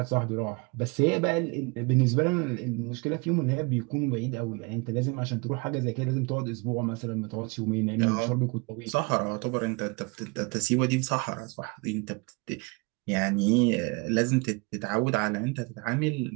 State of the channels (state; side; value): quieter; left; 29.2 dB